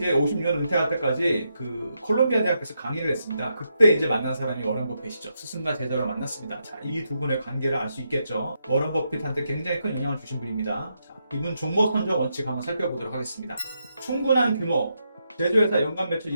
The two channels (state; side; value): inverted; both; correlation -0.82